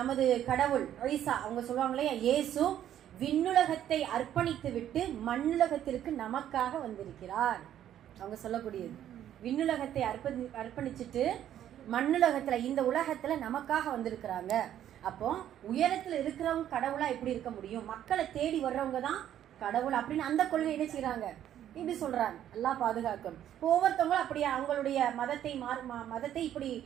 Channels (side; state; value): left; quieter; 11.0 dB